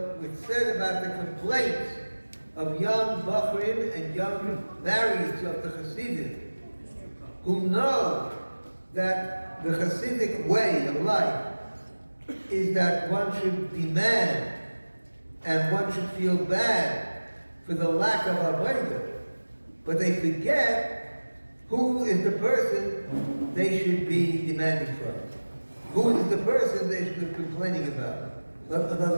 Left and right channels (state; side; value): inverted; both; correlation -1.00